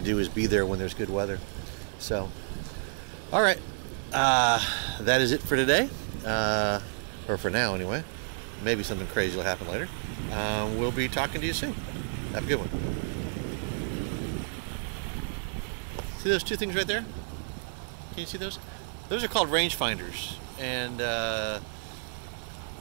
do, is be there when there's good weather. So all right, that is it for today, or for now anyway. Maybe something crazy will happen later. We'll be talking to you soon. Have a good one. See those 2 things right there? Can you see those? Those are called rangefinders. And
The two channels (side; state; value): left; silent; 58 dB below the other